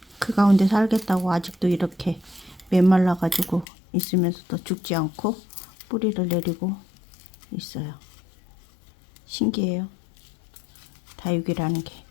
그 가운데 살겠다고 아직도 이렇게 메말라 가지고 있으면서도 죽지 않고 뿌리를 내리고 있어요. 신기해요. 다육이라는 게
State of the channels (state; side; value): drops out; right; at 3.7 s